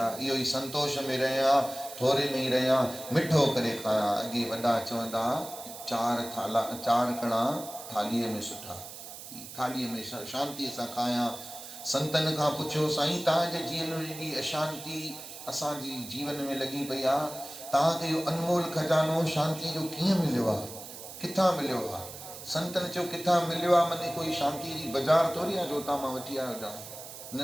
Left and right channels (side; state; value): right; noise; hiss, 13 dB below the sound